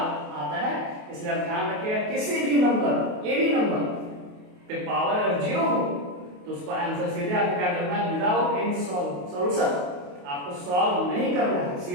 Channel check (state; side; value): late; left; 28 ms